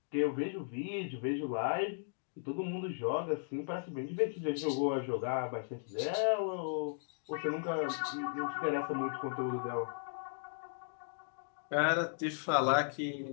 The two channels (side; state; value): right; silent; digital silence